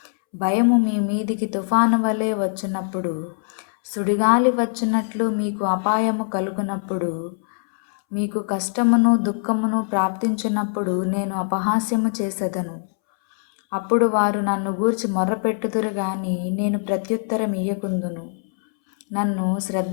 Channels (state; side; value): silent; right; 64 dB below the other